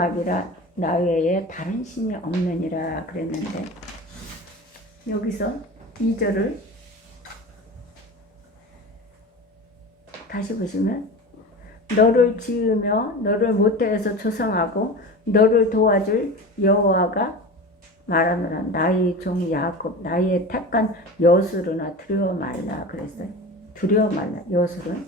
나 외에 다른 신이 없느니라 그랬는데 여기서 2절을 다시 보시면 너를 지으며 너를 모태에서 조성하고 너를 도와줄 여호와가 말하노라. 나의 종 야곱 나의 택한 여수르나 두려워 말라 그랬어요. 두려워 말라. 여수른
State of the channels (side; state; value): both; normal; correlation 0.31